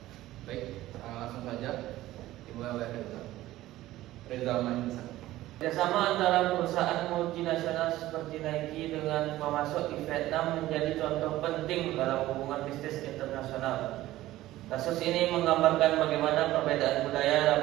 Baik, langsung saja dimulai oleh Reza Manisa. Kerjasama antara perusahaan multinasional seperti Nike dengan pemasok di Vietnam menjadi contoh penting dalam hubungan bisnis internasional. Kasus ini menggambarkan bagaimana perbedaan budaya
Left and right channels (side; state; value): left; quieter; 15.7 dB